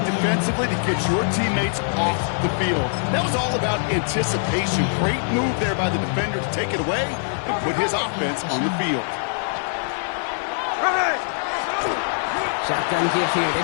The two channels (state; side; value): silent; right; 60 dB below the other